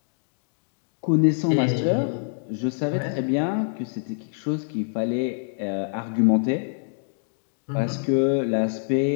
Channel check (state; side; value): silent; right; digital silence